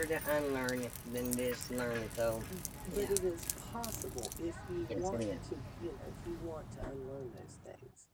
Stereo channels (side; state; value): both; identical; correlation 1.00